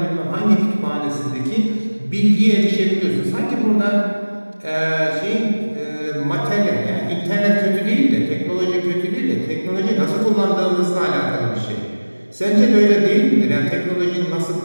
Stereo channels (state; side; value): inverted; both; correlation -1.00